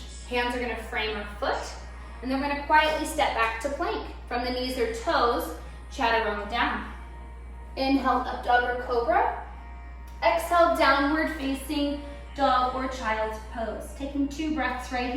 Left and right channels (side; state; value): both; identical; correlation 1.00